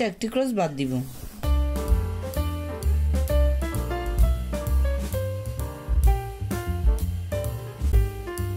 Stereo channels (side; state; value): both; identical; correlation 1.00